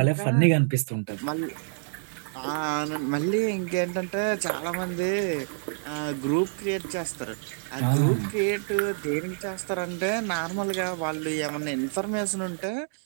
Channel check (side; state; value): left; silent; digital silence